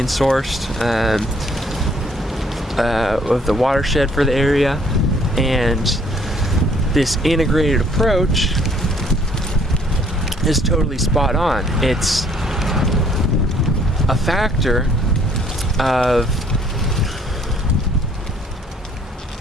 source of the watershed for the area, and this integrated approach is totally spot on. It's a factor of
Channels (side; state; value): both; normal; correlation 0.62